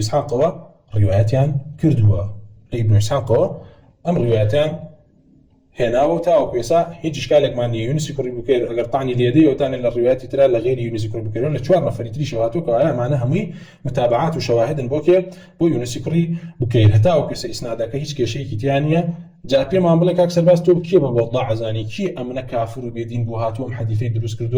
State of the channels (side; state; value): both; identical; correlation 1.00